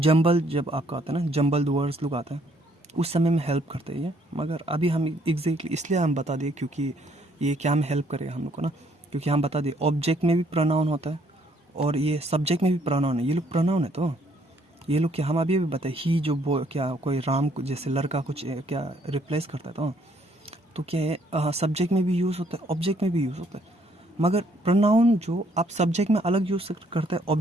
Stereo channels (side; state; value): both; normal; correlation 0.67